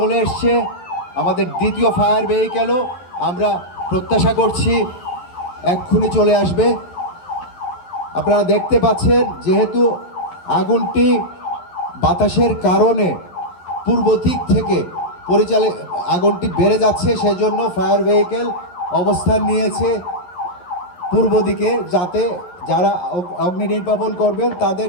এসছে, আমাদের দ্বিতীয় ফায়ার ভেহিকেলও আমরা প্রত্যাশা করছি এক্ষুনি চলে আসবে। আপনারা দেখতে পাচ্ছেন, যেহেতু আগুনটি বাতাসের কারণে পূর্ব দিক থেকে আগুনটি বেড়ে যাচ্ছে, সেজন্য ফায়ার ভেহিকেল অবস্থান নিয়েছে পূর্ব দিকে, যাতে যারা অগ্নি নির্বাপন করবেন তাদের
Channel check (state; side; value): late; right; 11 ms